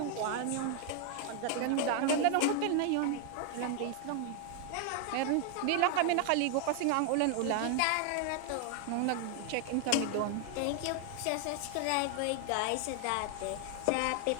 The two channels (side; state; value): both; different; correlation 0.00